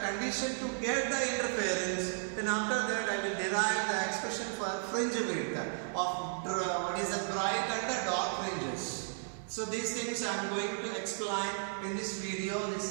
condition to get the interference, then after that I will derive the expression for fringe width of what is the bright and the dark fringes. So these things I am going to explain in this video.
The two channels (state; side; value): silent; left; digital silence